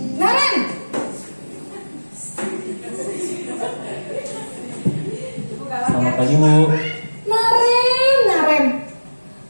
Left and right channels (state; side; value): inverted; both; correlation -1.00